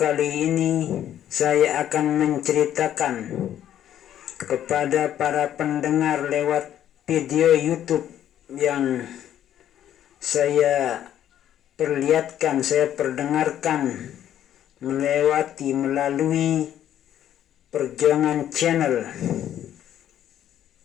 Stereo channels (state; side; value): quieter; right; 10.9 dB